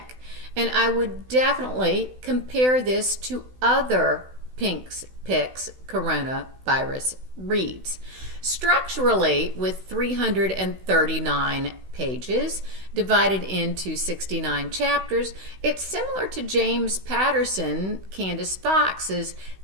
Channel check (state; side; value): late; left; 16 ms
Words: And I would definitely compare this to other Pink's Picks coronavirus reads. Structurally, with 339 pages divided into 69 chapters, it's similar to James Patterson, Candace Fox's